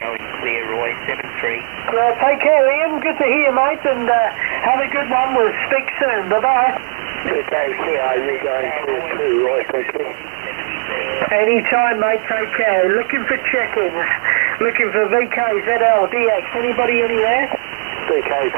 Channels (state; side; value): silent; left; digital silence